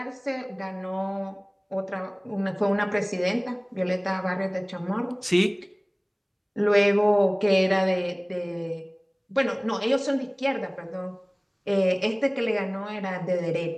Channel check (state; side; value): identical; both; correlation 1.00